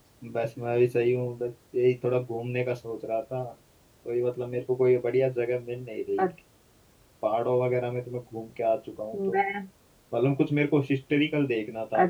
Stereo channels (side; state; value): both; identical; correlation 1.00